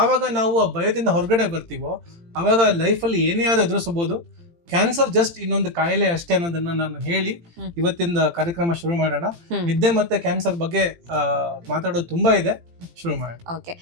ನಾವು ಆ ಭಯದಿಂದ ಹೊರಗಡೆ ಬರ್ತೀವೋ ಅವಾಗ ಲೈಫಲ್ಲಿ ಏನೇ ಆದ್ರೂ ಎದುರಿಸಬಹುದು. ಕ್ಯಾನ್ಸರ್ ಜಸ್ಟ್ ಇನ್ನೊಂದು ಕಾಯಿಲೆ ಅಷ್ಟೇ ಅನ್ನೋದನ್ನ ನಾನು ಹೇಳಿ ಇವತ್ತಿನ ಕಾರ್ಯಕ್ರಮ ಶುರು ಮಾಡೋಣ. ನಿದ್ದೆ ಮತ್ತೆ ಕ್ಯಾನ್ಸರ್ ಬಗ್ಗೆ ಮಾತಾಡೋದು ತುಂಬಾ ಇದೆ, ಶುರು ಮಾಡೋಣ. ಓಕೆ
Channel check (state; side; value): late; left; 18 ms